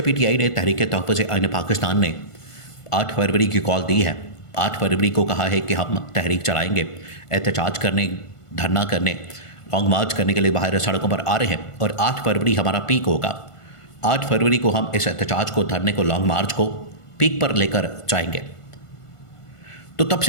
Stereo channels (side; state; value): right; late; 1.5 ms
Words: पीटीआई ने तहरीक तहफ़्फ़ुज़ आईन पाकिस्तान ने 8 फरवरी की कॉल दी है, 8 फरवरी को कहा है कि हम तहरीक चलाएंगे, एहतजाज करने, धरना करने, लॉन्ग मार्च करने के लिए बाहर सड़कों पर आ रहे हैं, और 8 फरवरी हमारा पीक होगा। 8 फरवरी को हम इस एहतजाज को, धरने को, लॉन्ग मार्च को पीक पर लेकर जाएंगे। तो तब